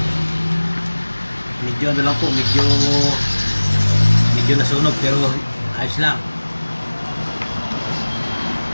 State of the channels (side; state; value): both; inverted; correlation -1.00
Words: Medyo ano lang po, medyo nasunog pero ayos lang.